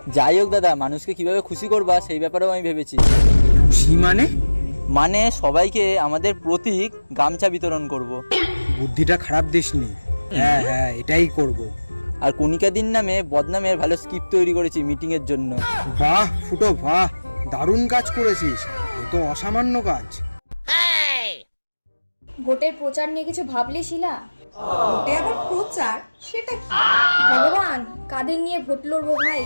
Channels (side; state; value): both; inverted; correlation -1.00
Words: যাই হোক দাদা, মানুষকে কিভাবে খুশি করবা সেই ব্যাপারেও আমি ভেবেছি। খুশি মানে সবাইকে আমাদের প্রতীক গামছা বিতরণ করব। বুদ্ধিটা খারাপ দিসনি। হ্যাঁ হ্যাঁ, এটাই করব। আর কণিকা দিন নামে বদনামের ভালো স্ক্রিপ্ট তৈরি করেছি মিটিং এর জন্য। বাহ ফুটো বাহ, দারুণ কাজ করেছিস, এ তো অসামান্য কাজ। ভোটের প্রচার নিয়ে কিছু ভাবলি শিলা? ভোটে আবার প্রচার? সেটা কি? ভগবান, কাদের নিয়ে ভোট লড়বো ভাই?